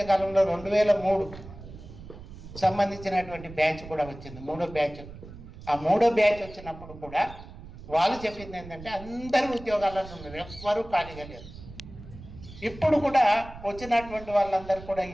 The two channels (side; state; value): right; noise; rumble, 15 dB below the sound